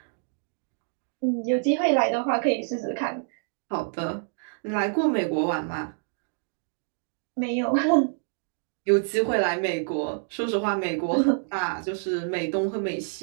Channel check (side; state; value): left; silent; digital silence